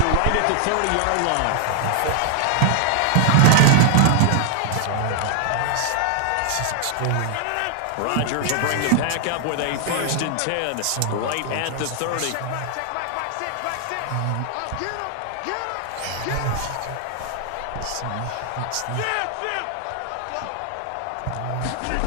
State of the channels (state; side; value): different; both; correlation 0.00